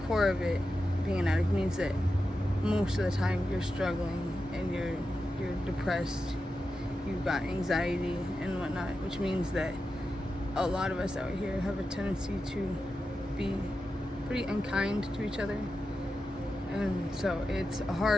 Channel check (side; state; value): both; normal; correlation 0.90